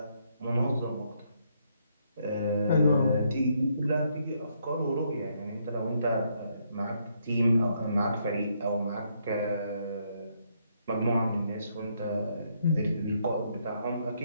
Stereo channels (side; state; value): both; inverted; correlation -0.74